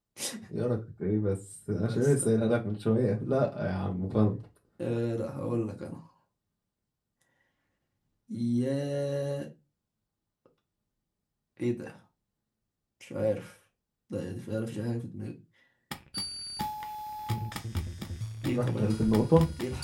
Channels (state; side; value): identical; both; correlation 1.00